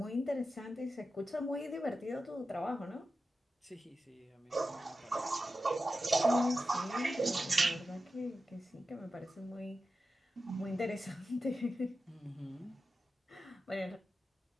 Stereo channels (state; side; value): normal; both; correlation 0.92